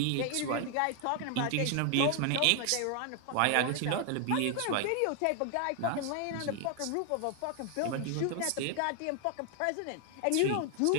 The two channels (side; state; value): both; different; correlation 0.00